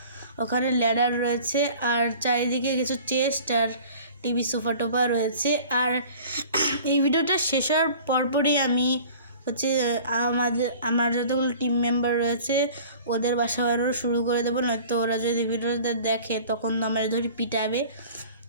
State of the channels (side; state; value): both; inverted; correlation -0.45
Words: ওখানে ল্যাডার রয়েছে, আর চারিদিকে কিছু চেস্ট আর টিভি সোফা টোফা রয়েছে। আর এই ভিডিওটা শেষ হওয়ার পরপরই আমি হচ্ছে আমার যতগুলো টিম মেম্বার রয়েছে ওদের বাসা বানানো শুরু করে দেবো, নয়তো ওরা যদি ভিডিওটা দেখে তখন তো আমার ধরে পিটাবে।